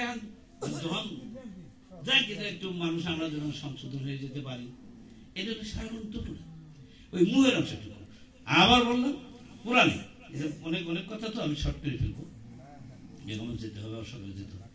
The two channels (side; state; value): both; identical; correlation 1.00